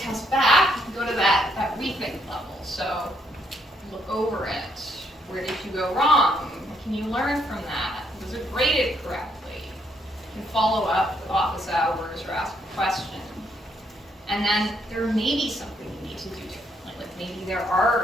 back, you can go to that rethink level. So look over it. Where did you go wrong? What can you learn from that? Was it graded correctly? You can follow up with office hours or ask a question. And then there may be something you need to do differently. Like maybe there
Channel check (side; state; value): both; normal; correlation 0.73